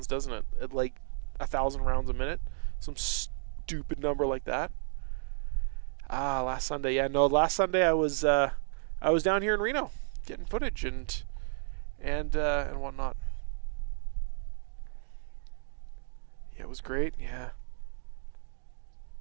doesn't it? At like 1,000 rounds a minute, some stupid number like that. Last Sunday, yeah, no, last Sunday I was down here in Reno getting footage and whatnot. Yeah, it was great. Yeah.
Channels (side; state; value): left; silent; digital silence